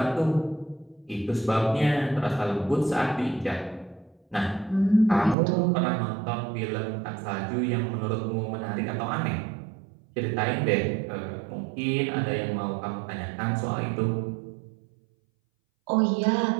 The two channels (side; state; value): left; drops out; at 5.4 s